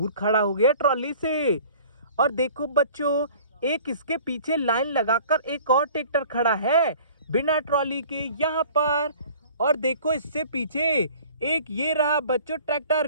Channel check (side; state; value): both; inverted; correlation -0.48